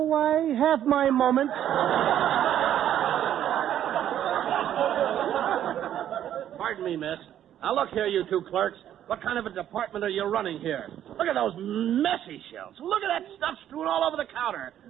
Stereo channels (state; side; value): quieter; left; 10.9 dB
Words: I have my moments. Pardon me, miss. Now, look here, you two clerks. What kind of a department are you running here? Look at those messy shelves. Look at that stuff strewn all over the counter.